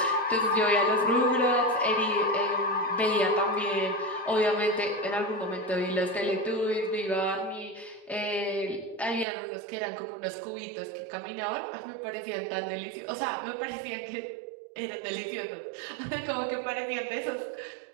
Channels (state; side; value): drops out; left; at 9.2 s